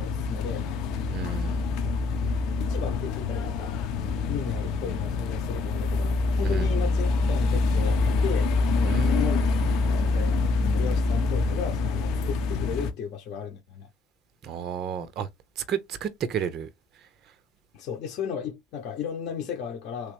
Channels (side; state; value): right; quieter; 3.1 dB